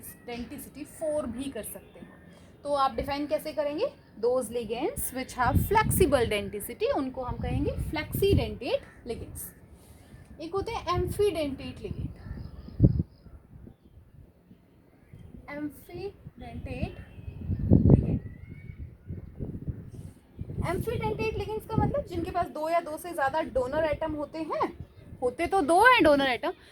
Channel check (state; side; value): identical; both; correlation 1.00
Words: 4 भी कर सकते हैं। तो आप डिफाइन कैसे करेंगे? Those ligands which have flexible denticity, उनको हम कहेंगे फ्लेक्सीडेंटेट लिगेंड्स। एक होते हैं एम्फीडेंटेट लिगेंड। एम्फीडेंटेट लिगेंड, एम्फीडेंटेट लिगेंड्स का मतलब जिनके पास दो या दो से ज्यादा डोनर एटम होते हैं, होते तो दो हैं डोनर एटम,